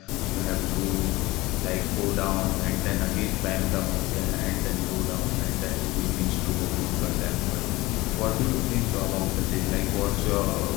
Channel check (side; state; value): right; quieter; 20.3 dB